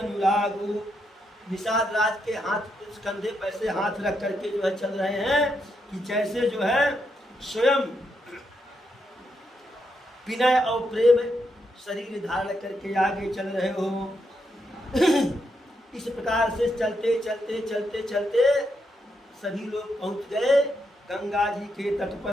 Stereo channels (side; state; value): both; normal; correlation 0.81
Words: निषाद राज के हाथ कंधे पे ऐसे हाथ रख करके जो है चल रहे हैं कि जैसे जो है स्वयं विनय और प्रेम शरीर धारण करके आगे चल रहे हो। इस प्रकार से चलते चलते चलते चलते सभी लोग पहुंच गए गंगा जी के तट